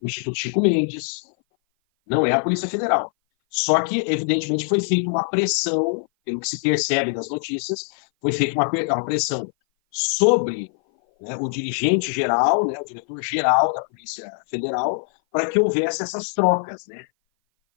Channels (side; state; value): right; silent; 57 dB below the other